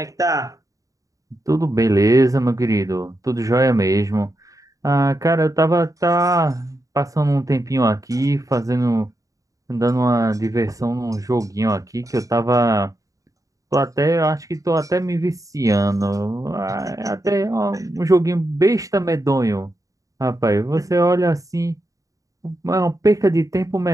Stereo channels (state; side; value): late; left; 0.16 ms